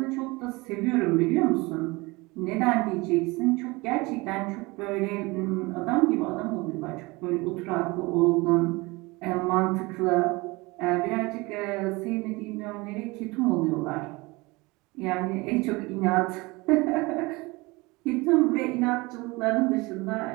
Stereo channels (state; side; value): quieter; left; 23.8 dB